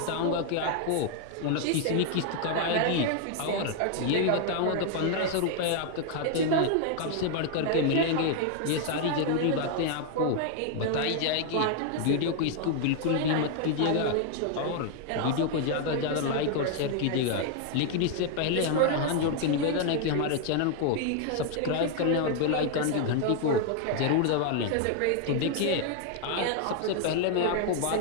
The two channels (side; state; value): both; different; correlation 0.00